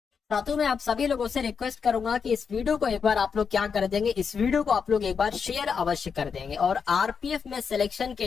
साथियों, मैं आप सभी लोगों से रिक्वेस्ट करूंगा कि इस वीडियो को एक बार आप लोग क्या कर देंगे, इस वीडियो को आप लोग एक बार शेयर अवश्य कर देंगे। और आरपीएफ में सिलेक्शन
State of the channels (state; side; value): quieter; right; 6.1 dB